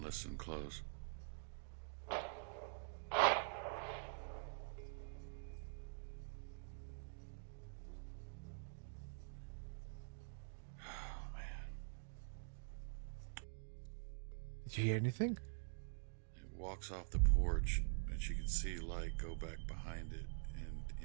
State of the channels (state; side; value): silent; left; digital silence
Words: listen close. Did you hear anything? It walks off the porch, and she can see light go back behind it and